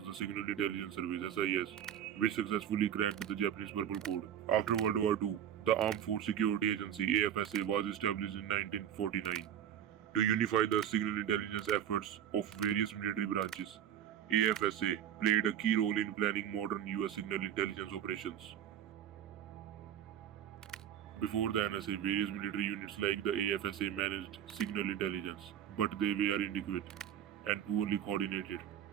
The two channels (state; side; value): quieter; left; 10.0 dB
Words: the Signal Intelligence Service SIS, which successfully cracked the Japanese Purple Code. After World War II, the Armed Force Security Agency AFSA was established in 1949 to unify the signal intelligence efforts of various military branches. AFSA played a key role in planning modern US signal intelligence operations. Before the NSA, various military units like the AFSA managed signal intelligence, but they were inadequate and poorly coordinated.